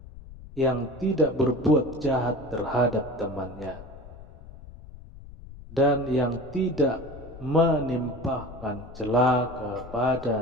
yang tidak berbuat jahat terhadap temannya, dan yang tidak menimpahkan cela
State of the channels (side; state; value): left; noise; rumble, 17 dB below the sound